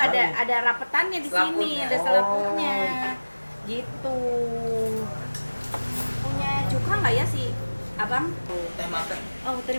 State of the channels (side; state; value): both; inverted; correlation -1.00